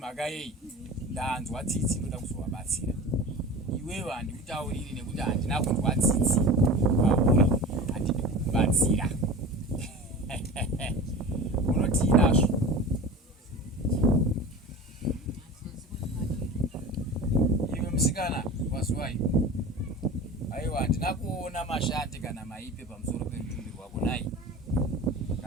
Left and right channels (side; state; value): both; normal; correlation 0.35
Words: yei. Ndanzwa tsitsi ndoda kuzovabatsira. Iwewe handikutauriri nekuti handina kunzwa tsitsi. Pauri handidi kukubatsira. Unoti inazvo. Iwe musikana wazwai. Aiwa handina kuona mashati kana maipe pamusoro pemutumbi wako nai.